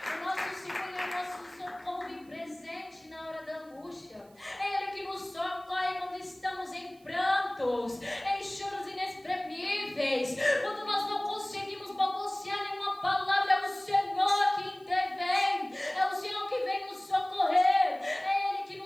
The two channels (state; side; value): noise; right; hiss, 29 dB below the sound